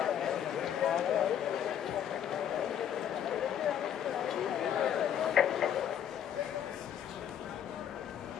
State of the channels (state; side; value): quieter; right; 9.7 dB